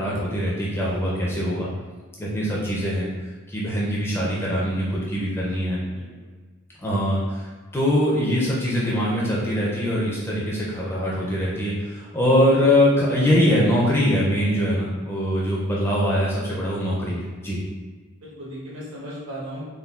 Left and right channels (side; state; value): both; normal; correlation 0.58